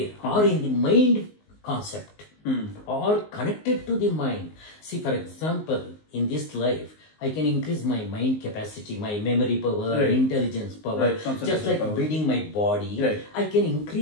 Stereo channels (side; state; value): right; late; 19 ms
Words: are in the mind concept, or connected to the mind. See, for example, in this life, I can increase my mind capacity, my memory power, intelligence power, just like building my body. I can